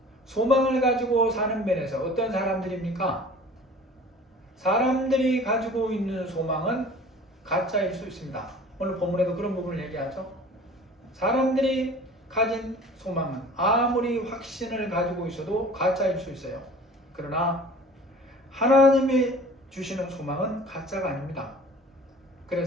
소망을 가지고 사는 면에서 어떤 사람들입니까? 사람들이 가지고 있는 소망은 가짜일 수 있습니다. 오늘 본문에도 그런 부분을 얘기하죠. 사람들이 가진 소망은 아무리 확신을 가지고 있어도 가짜일 수 있어요. 그러나 하나님이 주시는 소망은 가짜가 아닙니다.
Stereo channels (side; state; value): both; normal; correlation 0.45